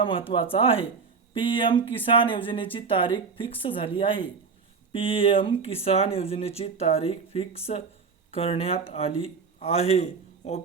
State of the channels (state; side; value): quieter; left; 5.2 dB